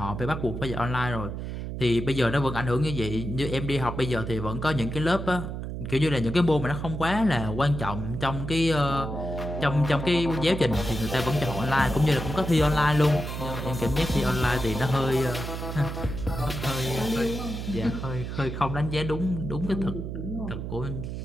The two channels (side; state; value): right; noise; hum, 6 dB below the sound